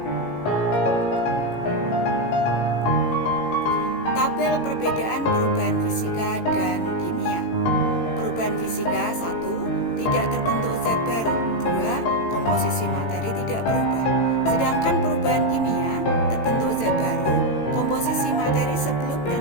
Tabel perbedaan perubahan fisika dan kimia. Perubahan fisika: 1. Tidak terbentuk zat baru. 2. Komposisi materi tidak berubah. Sedangkan perubahan kimia: terbentuk zat baru, komposisi materi sebelum dan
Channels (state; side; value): late; right; 18 ms